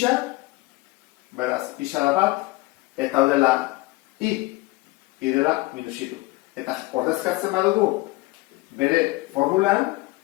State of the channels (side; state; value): right; quieter; 21.3 dB